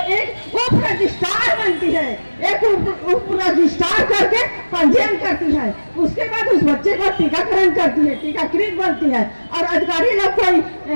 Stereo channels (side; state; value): both; inverted; correlation -1.00